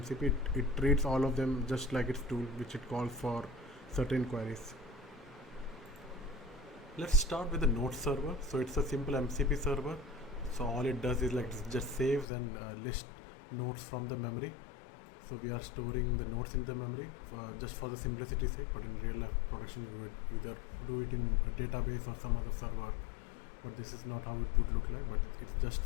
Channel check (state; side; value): drops out; right; at 12.2 s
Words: MCP. It treats all of them just like its tool, which it calls for certain queries. Let's start with the node server. So it's a simple MCP server. So all it does is like just saves and lists nodes from the memory. So we are storing the nodes in the memory just for the simplicity's sake, but in real life production we would either do it in a database or some other server, but this is not how it would look like, but it's just